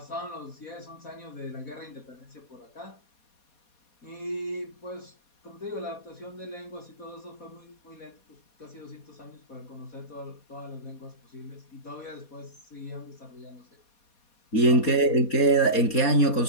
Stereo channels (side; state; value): right; late; 4.2 ms